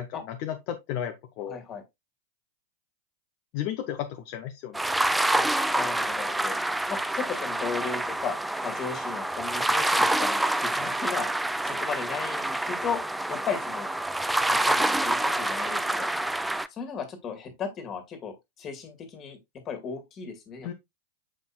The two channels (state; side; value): normal; both; correlation 0.84